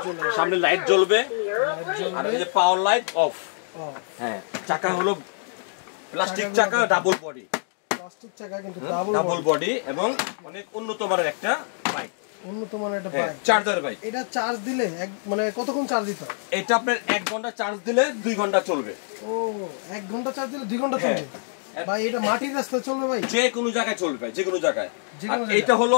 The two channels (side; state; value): right; silent; digital silence